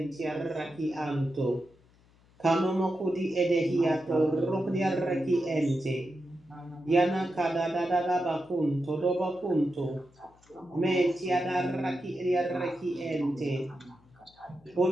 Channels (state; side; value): noise; left; hum, 30 dB below the sound